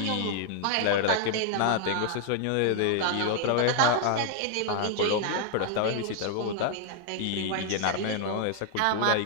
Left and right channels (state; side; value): different; both; correlation 0.00